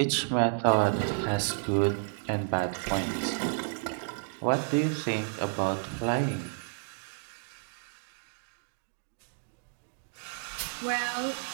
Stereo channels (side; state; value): left; silent; digital silence